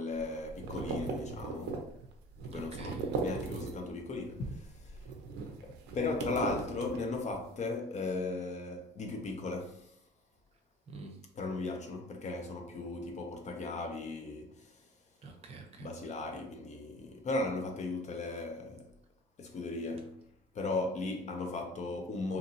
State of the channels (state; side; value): normal; both; correlation 0.45